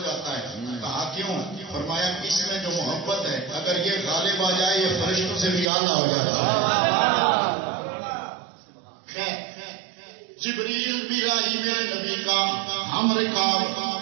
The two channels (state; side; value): drops out; left; at 5.7 s